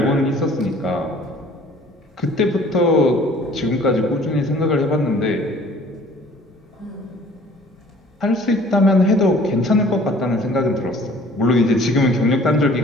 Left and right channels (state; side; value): normal; both; correlation 0.52